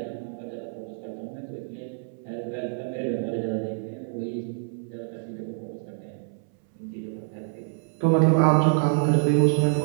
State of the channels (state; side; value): silent; left; 60 dB below the other